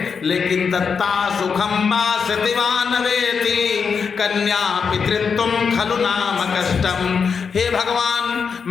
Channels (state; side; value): quieter; right; 6.0 dB